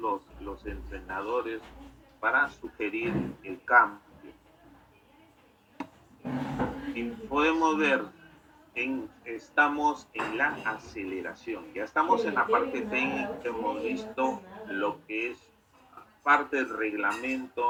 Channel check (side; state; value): both; identical; correlation 1.00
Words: entrenadores para sugerir el cambio. Y podemos ver, estamos en la aceleración, ya estamos en la parte técnica, hemos visto lo que es parte del